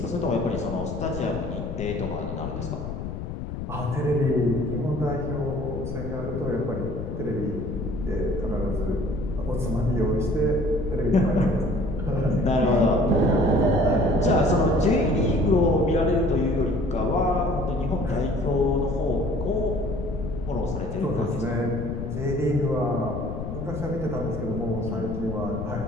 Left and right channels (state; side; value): noise; left; rumble, 6 dB below the sound